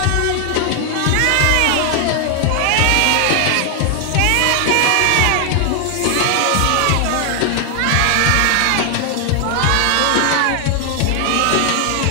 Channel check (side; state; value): both; different; correlation 0.00